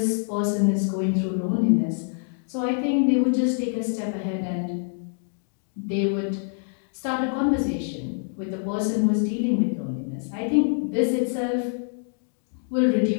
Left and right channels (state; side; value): silent; right; 61 dB below the other